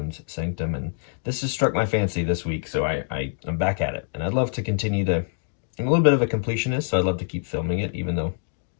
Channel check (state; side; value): silent; right; digital silence